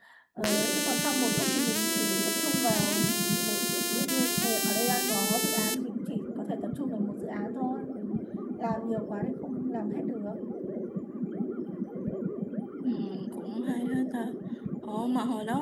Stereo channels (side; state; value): both; identical; correlation 1.00